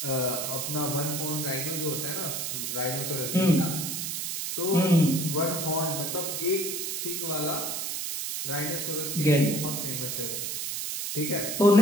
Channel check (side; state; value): right; noise; hiss, 3 dB below the sound